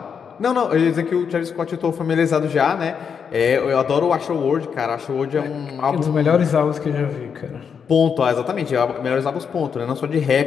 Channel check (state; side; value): quieter; right; 6.8 dB